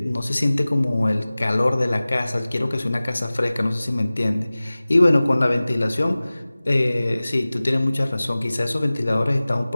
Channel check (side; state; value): both; inverted; correlation -0.98